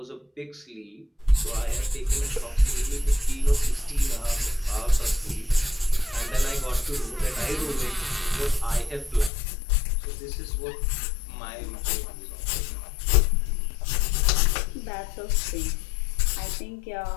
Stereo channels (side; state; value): right; drops out; at 9.3 s